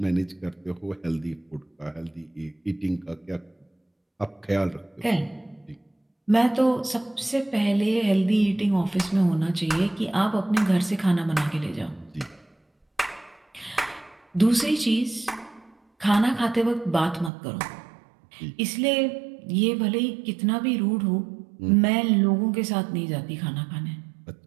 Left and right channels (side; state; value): left; drops out; at 17.3 s